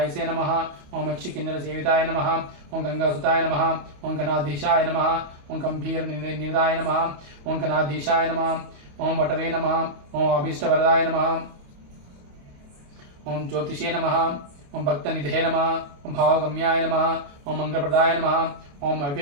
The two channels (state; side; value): late; left; 28 ms